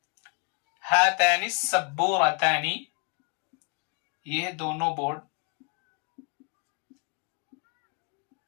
ہاتان السبورتانی، یہ دونوں بورڈ۔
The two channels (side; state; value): right; quieter; 33.8 dB